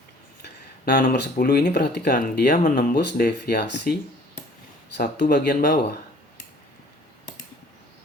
Nah, nomor 10 ini perhatikan, dia menembus deviasi satu bagian bawah.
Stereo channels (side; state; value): both; normal; correlation 0.54